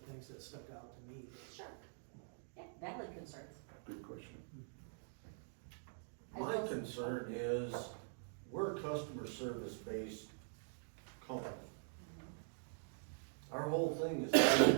things that stuck out to me. Sure. Yeah, valid concerns. Good question. I My will- concern is, we're a customer service based company. Our whole thing is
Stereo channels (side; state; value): left; silent; digital silence